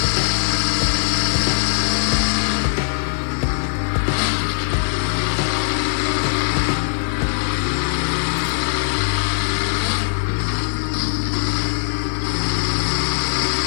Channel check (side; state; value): right; silent; 57 dB below the other